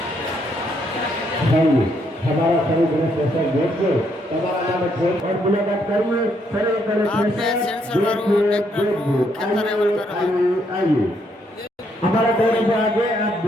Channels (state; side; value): normal; both; correlation 0.73